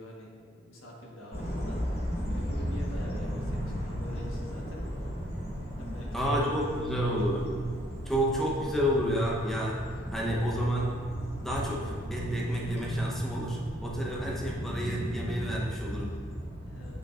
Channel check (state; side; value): normal; both; correlation 0.68